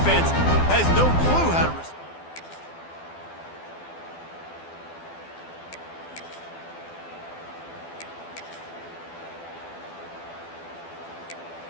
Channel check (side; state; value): right; late; 12 ms